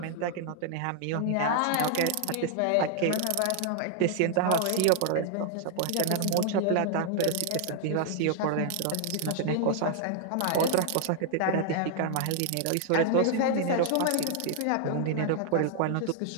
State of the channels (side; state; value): both; different; correlation 0.00